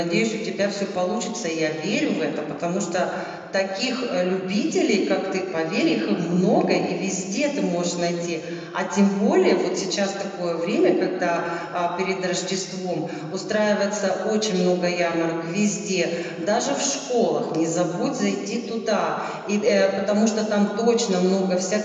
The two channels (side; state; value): both; identical; correlation 1.00